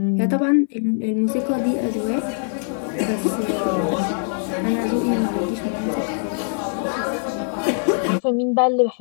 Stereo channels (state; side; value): silent; right; digital silence